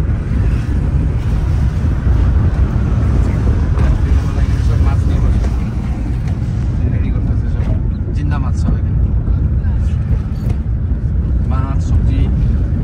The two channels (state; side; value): identical; both; correlation 1.00